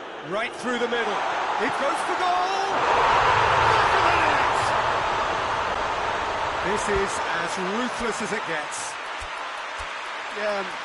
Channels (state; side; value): identical; both; correlation 1.00